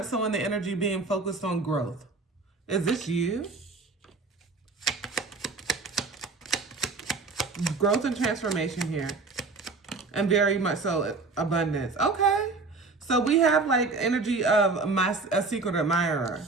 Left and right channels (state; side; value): quieter; left; 3.9 dB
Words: so in the energy being focused on growth. Is this you? Growth and transformation here. And very much so abundance. Okay. So we have like energy of a secret admirer.